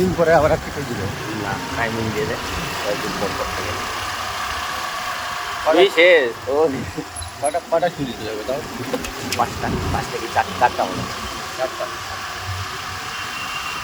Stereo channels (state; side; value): identical; both; correlation 1.00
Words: দিন পরে আবার একটা শুই দিবে না, টাইমিং দিয়ে দেয়, কয়েকদিন পর থেকে। শেষ ও কটা শুই দিতে যাবে তাও? 5টা কি 4টা হলো,